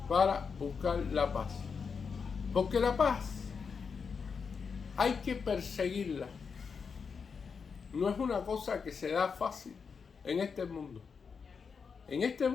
para buscar la paz. Porque la paz hay que perseguirla. No es una cosa que se da fácil en este mundo. En este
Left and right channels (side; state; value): right; quieter; 5.7 dB